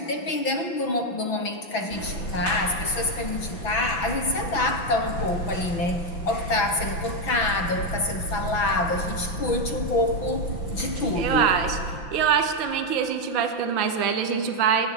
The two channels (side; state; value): right; late; 6.2 ms